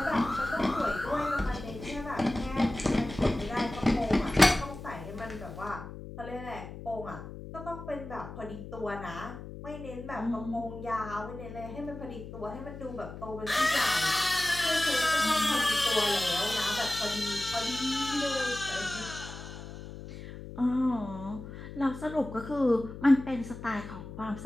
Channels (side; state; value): left; noise; hum, 11 dB below the sound